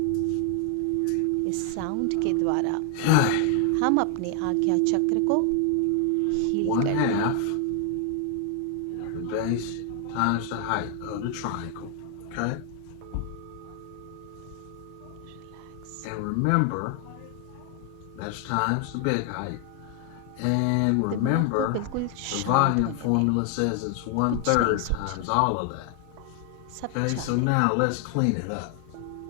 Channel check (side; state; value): both; different; correlation 0.00